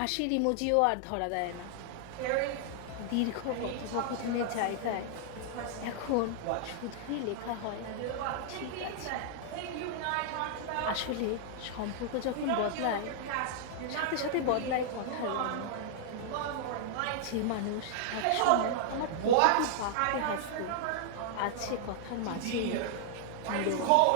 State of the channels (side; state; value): both; different; correlation -0.01